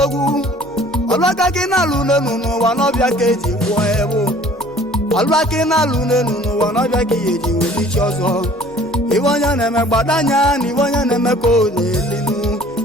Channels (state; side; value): normal; both; correlation 0.52